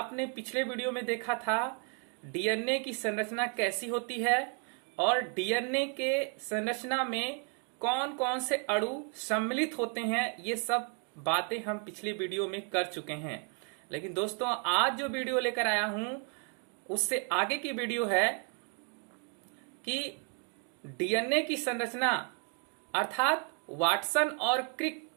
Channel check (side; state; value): left; quieter; 38.4 dB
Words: पिछले वीडियो में देखा था डीएनए की संरचना कैसी होती है और डीएनए के संरचना में कौन कौन से अणु सम्मिलित होते हैं। ये सब बातें हम पिछली वीडियो में कर चुके हैं। लेकिन दोस्तों, आज जो वीडियो लेकर आया हूं उससे आगे की वीडियो है कि डीएनए की संरचना अर्थात वाटसन और Crick